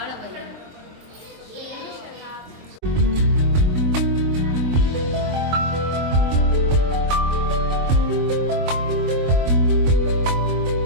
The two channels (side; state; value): left; late; 23 ms